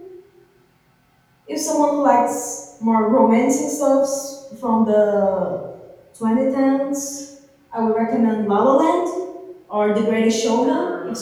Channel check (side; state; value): both; identical; correlation 1.00